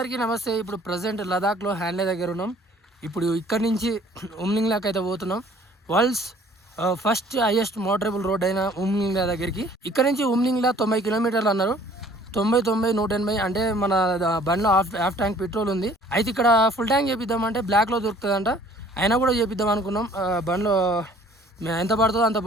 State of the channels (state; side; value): normal; both; correlation 0.55